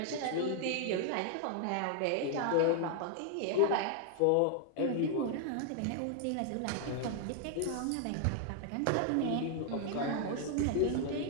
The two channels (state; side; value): different; both; correlation 0.00